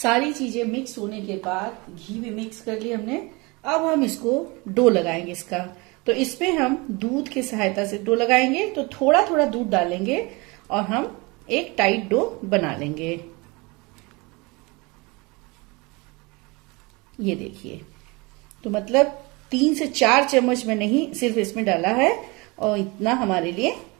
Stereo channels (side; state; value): left; quieter; 26.2 dB